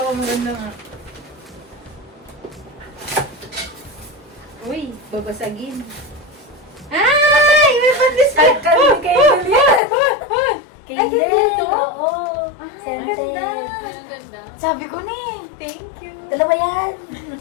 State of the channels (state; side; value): drops out; right; at 9.8 s